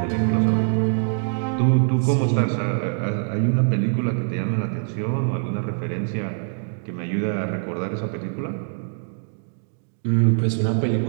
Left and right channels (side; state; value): left; silent; digital silence